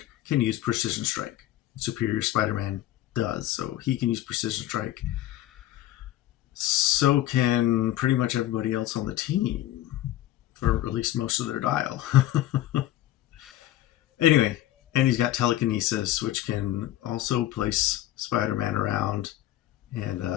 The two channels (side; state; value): right; quieter; 14.0 dB